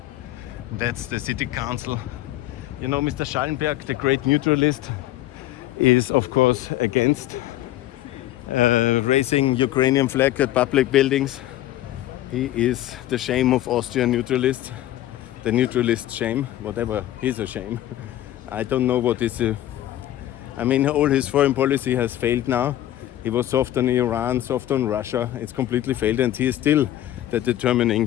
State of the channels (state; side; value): quieter; right; 13.9 dB